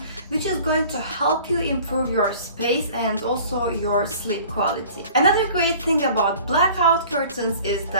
which is going to help you improve your space and also your sleep quality. Another great thing about blackout curtains is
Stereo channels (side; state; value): both; inverted; correlation -0.47